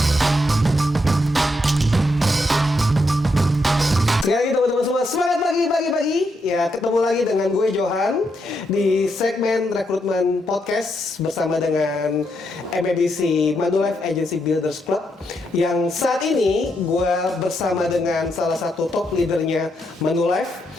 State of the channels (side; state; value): both; normal; correlation 0.80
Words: Sekali lagi teman-teman semua, semangat pagi. Ya, ketemu lagi dengan gue Johan di segmen rekrutmen podcast bersama dengan MABC Manulife Agency Builders Club. Yang saat ini gue bersama dengan salah satu top leadernya Manulife,